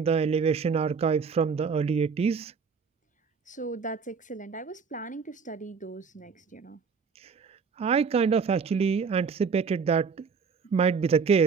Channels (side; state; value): left; quieter; 5.6 dB